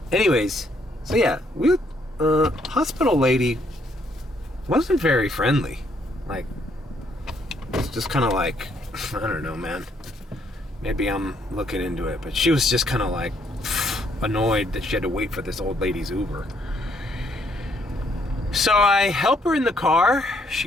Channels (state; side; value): normal; both; correlation 0.70